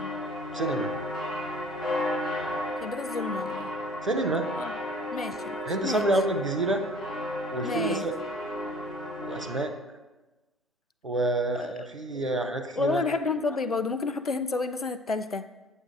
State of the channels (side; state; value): both; normal; correlation 0.49